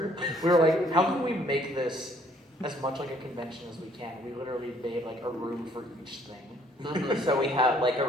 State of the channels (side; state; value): both; normal; correlation 0.62